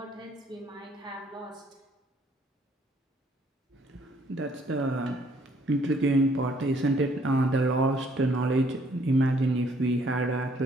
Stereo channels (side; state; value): both; normal; correlation 0.64